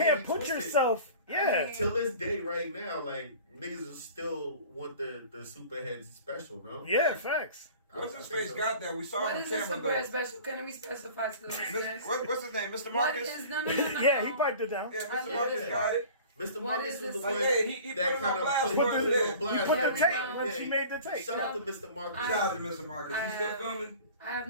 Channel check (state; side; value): inverted; both; correlation -0.42